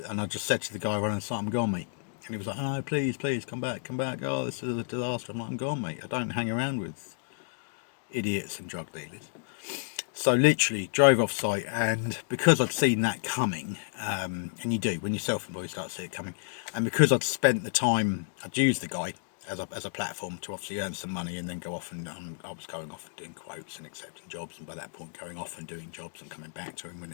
to the guy running the site, I'm gone, mate. And he was like, oh, please come back. Oh, this is a disaster. I'm like, I'm gone, mate. I don't hang around with idiots and drug dealers. So literally drove off site, and because I'd seen that coming, and you do when you're self-employed, you start to see it coming, and because I'd spent the time, I'd used the guy as a platform to obviously earn some money and then go off, and I was going off and doing quotes and accepting jobs, and by that point going off and doing jobs and coming back to him when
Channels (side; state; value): right; silent; digital silence